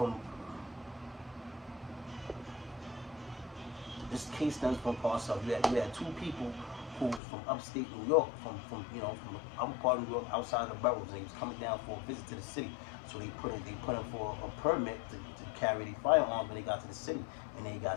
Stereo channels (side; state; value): right; drops out; at 7.2 s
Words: this case stems from parts of, you had 2 people who was from upstate New York, from the upper part of New York, outside the boroughs. They was coming down for a visit to the city. So they put in for a permit to carry their firearms when they got to the city, and they